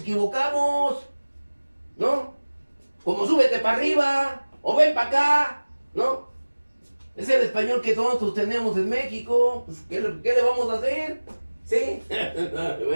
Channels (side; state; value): both; inverted; correlation -1.00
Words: ¿no? Como súbete para arriba, o ven para acá, ¿no? Es el español que nosotros tenemos en México. Pues, ¿qué le vamos a hacer? ¿Sí?